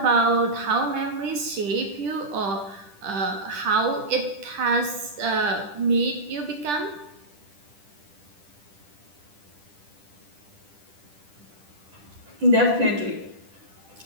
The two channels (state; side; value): late; left; 10 ms